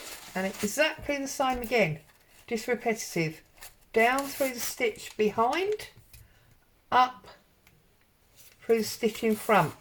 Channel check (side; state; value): both; identical; correlation 1.00